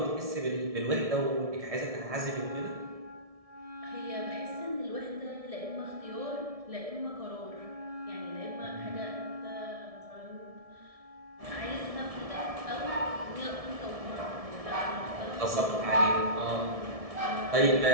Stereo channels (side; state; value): left; late; 1.7 ms